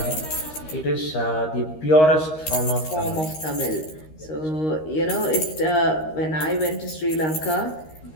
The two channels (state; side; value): late; right; 13 ms